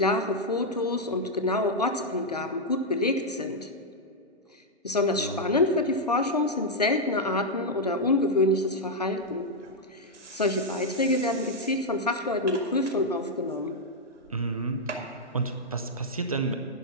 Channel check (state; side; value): normal; both; correlation -0.02